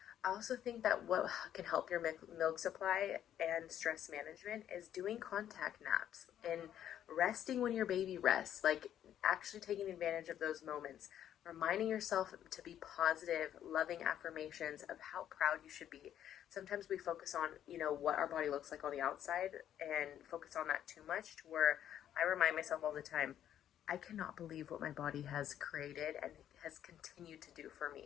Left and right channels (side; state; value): right; quieter; 10.6 dB